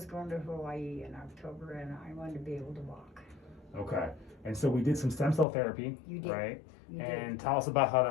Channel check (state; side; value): drops out; right; at 5.5 s